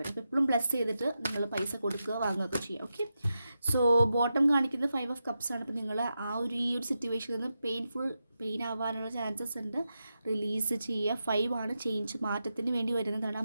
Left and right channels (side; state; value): both; inverted; correlation -0.88